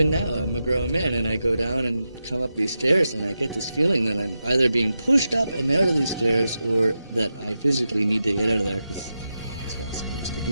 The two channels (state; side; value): inverted; both; correlation -0.89